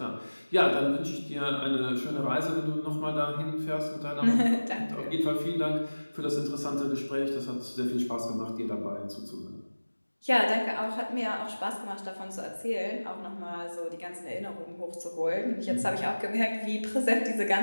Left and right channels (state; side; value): inverted; both; correlation -1.00